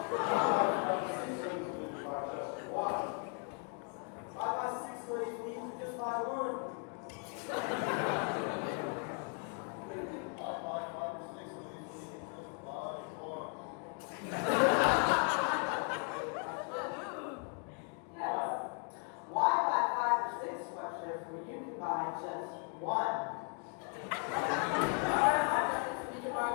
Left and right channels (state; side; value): quieter; right; 38.5 dB